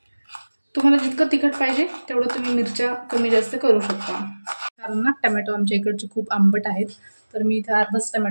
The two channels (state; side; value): inverted; both; correlation -1.00